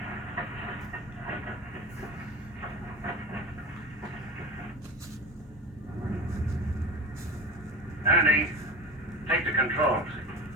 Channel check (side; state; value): both; normal; correlation 0.31